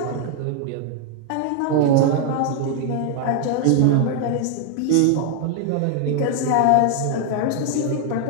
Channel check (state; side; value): different; both; correlation 0.00